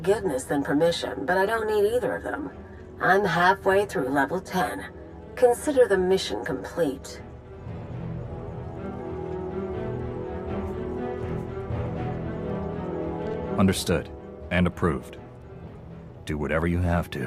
than permission, but I don't need either of them. I'm halfway through level 10. Consider the mission complete. Understood. And approved. Do whatever you have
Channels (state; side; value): identical; both; correlation 1.00